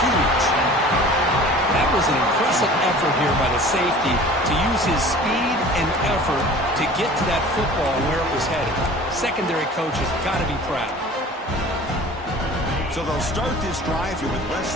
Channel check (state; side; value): normal; both; correlation 0.44